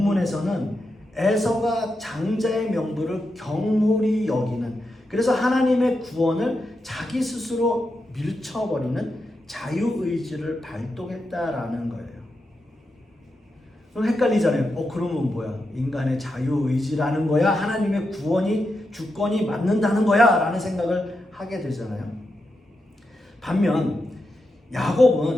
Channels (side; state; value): both; normal; correlation 0.87